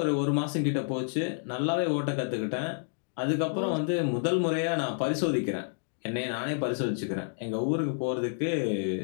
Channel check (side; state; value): right; silent; digital silence